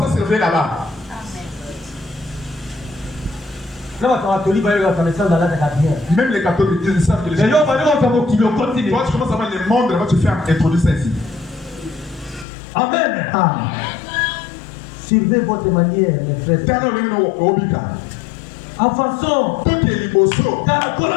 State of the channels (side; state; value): right; drops out; at 12.5 s